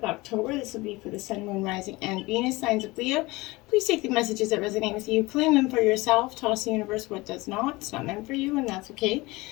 October. This will be for the Sun, Moon, Rising, and Venus signs of Leo. Please take the messages that resonate with you, claim them for yourself, toss the universe what does not. It's not meant for you, and that's okay.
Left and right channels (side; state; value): right; quieter; 22.0 dB